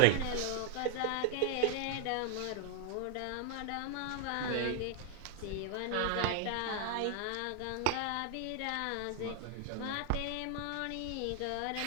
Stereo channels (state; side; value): different; both; correlation -0.01